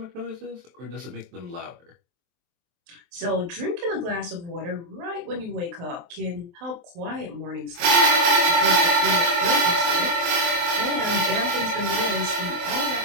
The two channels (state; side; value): late; left; 23 ms